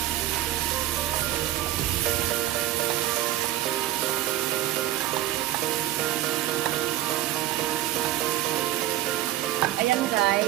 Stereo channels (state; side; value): quieter; left; 14.3 dB